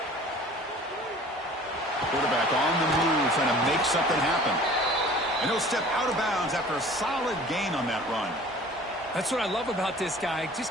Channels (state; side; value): normal; both; correlation 0.47